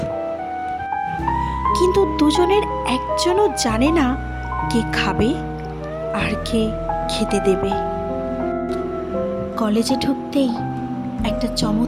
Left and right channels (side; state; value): both; identical; correlation 1.00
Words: কিন্তু দুজনের একজনও জানে না কে খাবে আর কে খেতে দেবে। কলেজে ঢুকতেই একটা